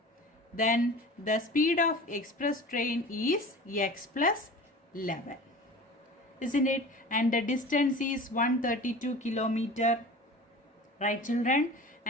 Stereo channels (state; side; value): normal; both; correlation 0.38